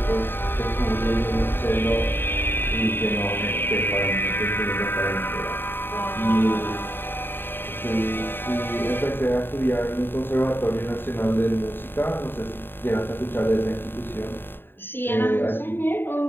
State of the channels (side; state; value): right; late; 0.10 ms